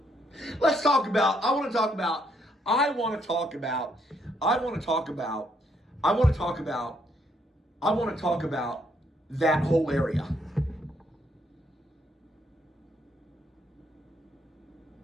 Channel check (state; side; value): normal; both; correlation 0.72